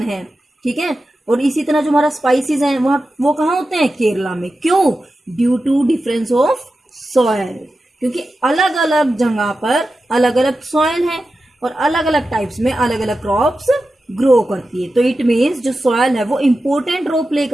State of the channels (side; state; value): both; normal; correlation 0.92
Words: है। ठीक है, और इसी तरह जो हमारा स्पाइसेस हैं वो कहाँ होते हैं, केरला में। क्यों, due to difference of soil, क्योंकि अलग अलग जगह पर अलग अलग सॉइल है और अलग अलग टाइप्स में अलग अलग क्रॉप्स ग्रो करती है। तो इट मीन्स जो सॉइल है वो इंपॉर्टेंट रोल प्ले